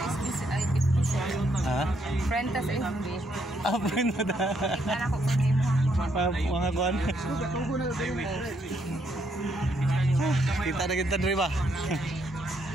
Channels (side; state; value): both; normal; correlation 0.74